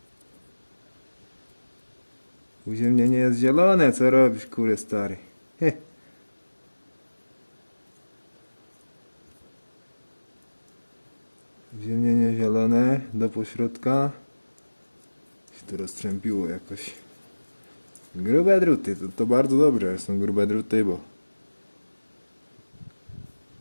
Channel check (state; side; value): inverted; both; correlation -1.00